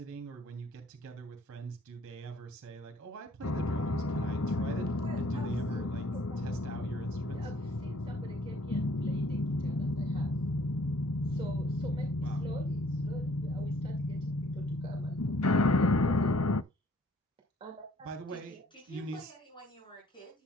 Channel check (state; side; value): normal; both; correlation 0.59